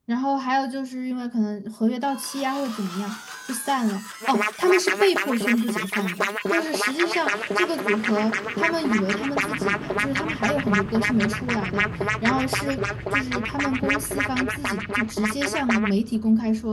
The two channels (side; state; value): both; identical; correlation 1.00